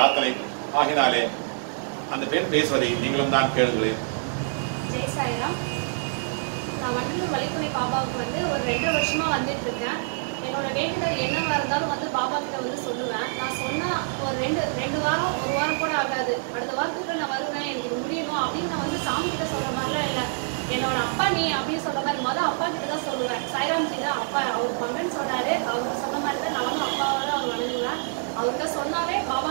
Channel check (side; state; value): left; silent; digital silence